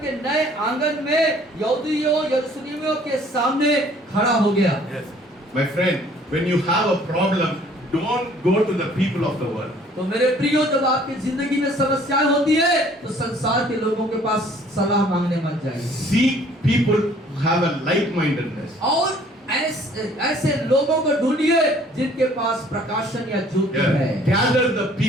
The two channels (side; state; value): both; normal; correlation 0.56